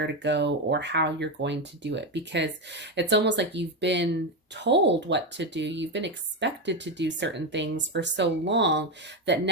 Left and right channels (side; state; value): both; normal; correlation 0.11